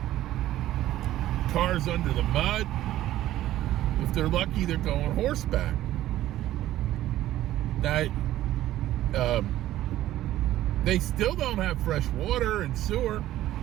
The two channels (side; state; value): left; quieter; 14.0 dB